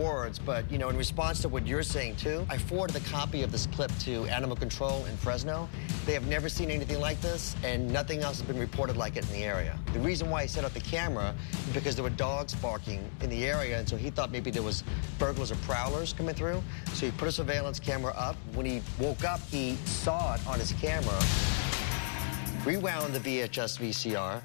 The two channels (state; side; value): silent; right; digital silence